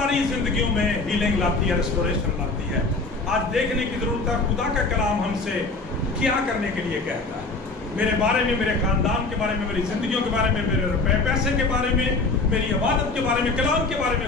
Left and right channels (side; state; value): right; quieter; 3.6 dB